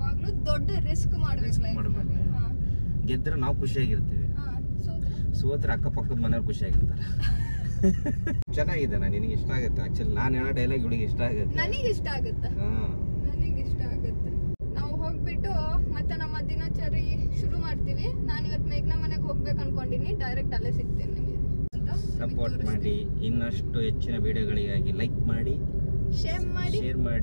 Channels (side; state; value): both; inverted; correlation -1.00